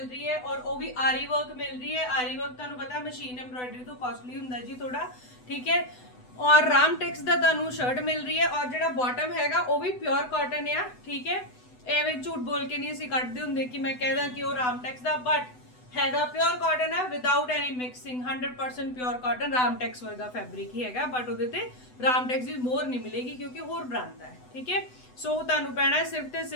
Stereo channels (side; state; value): right; late; 8.0 ms